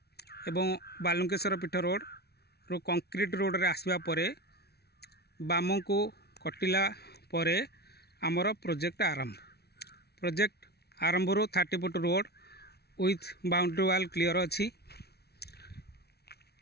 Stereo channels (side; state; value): right; late; 0.47 ms